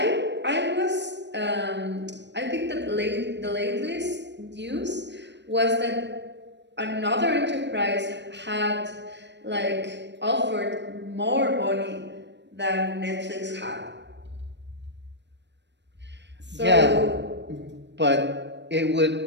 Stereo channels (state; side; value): late; left; 0.51 ms